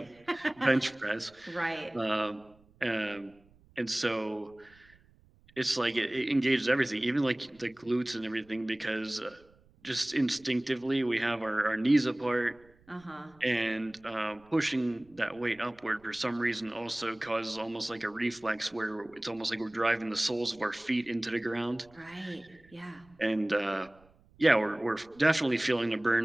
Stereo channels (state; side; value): noise; right; rumble, 29 dB below the sound